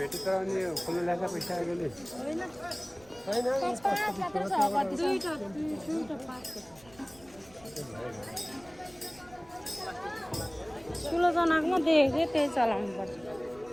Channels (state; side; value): noise; right; rumble, 24 dB below the sound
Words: त अनि खोल्नु लाग्छ पैसा आएकोले ठुलो जनाकोमा देखेको थिएँ त्यही चलाउनु पर्छ।